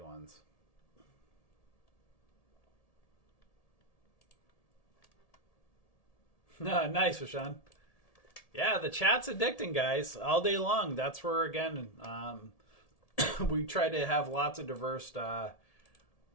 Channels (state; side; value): late; right; 1.7 ms